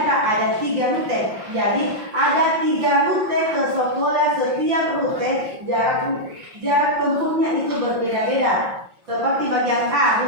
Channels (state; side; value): late; left; 5.6 ms